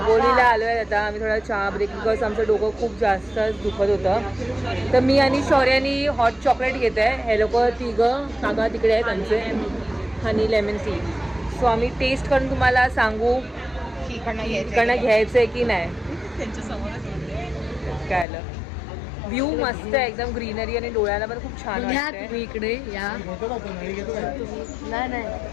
आलो आहे आता. आम्ही थोडा चहा ब्रेक, बिकॉज आमचं डोकं खूप जास्त दुखत होतं. तर मी आणि शौर्यानी हॉट चॉकलेट घेत आहे. हे लोक 3 काका तिकडे आहेत आमचे, हनी लेमन टी. सो आम्ही टेस्ट करून तुम्हाला सांगू इकडनं घ्यायचं आहे की नाही. काय आलं, व्ह्यू मस्त आहे एकदम, ग्रीनरी आणि डोळ्याला पण खूप छान वाटतंय. तुम्ही इकडे या. नाही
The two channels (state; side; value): drops out; right; at 18.2 s